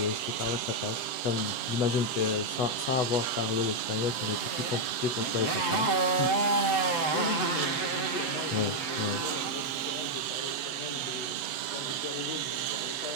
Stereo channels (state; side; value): late; right; 7.9 ms